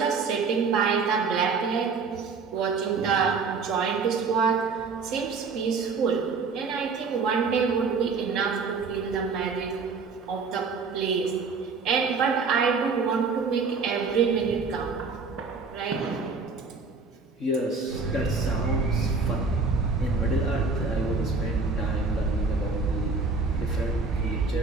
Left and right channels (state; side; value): quieter; left; 4.6 dB